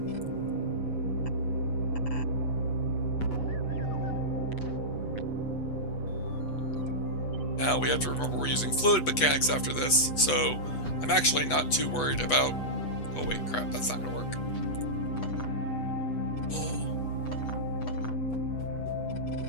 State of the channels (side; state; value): right; late; 8.1 ms